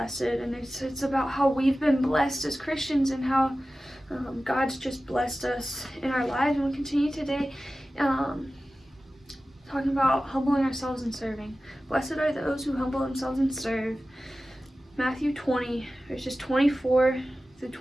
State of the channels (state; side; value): normal; both; correlation 0.95